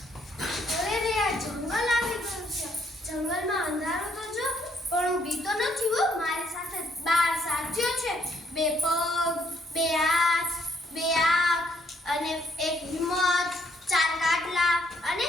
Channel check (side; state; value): both; normal; correlation 0.70